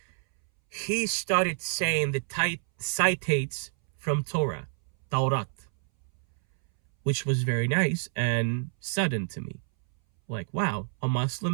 He started saying the citates from Torah, which was very nice and sudden to me. Like, wow, a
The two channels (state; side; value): silent; left; 59 dB below the other